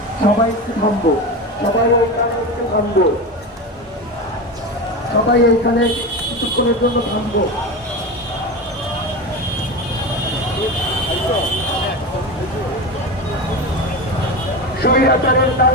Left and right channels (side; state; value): both; normal; correlation 0.23